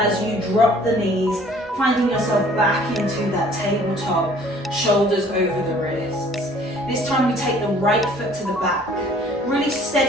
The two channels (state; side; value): normal; both; correlation 0.55